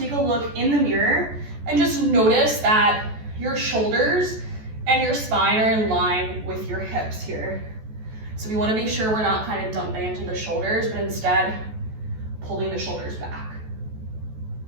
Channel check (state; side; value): late; left; 14 ms